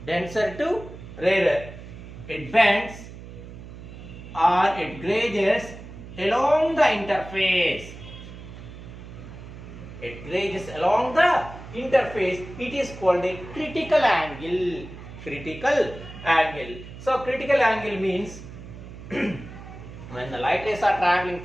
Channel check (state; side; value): noise; right; hum, 14 dB below the sound